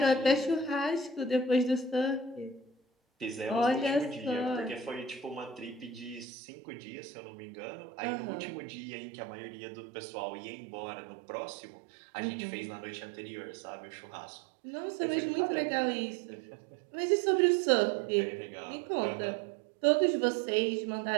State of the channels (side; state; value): left; drops out; at 6.2 s